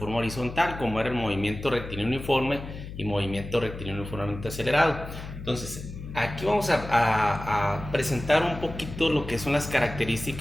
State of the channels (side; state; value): left; noise; hum, 11 dB below the sound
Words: horizontal, como era el movimiento rectilíneo uniforme y movimiento rectilíneo uniformemente acelerado. Entonces, aquí vamos a presentar un poquito lo que son las